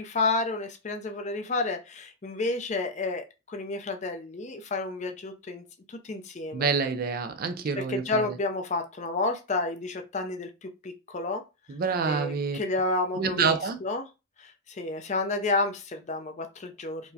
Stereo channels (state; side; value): normal; both; correlation -0.02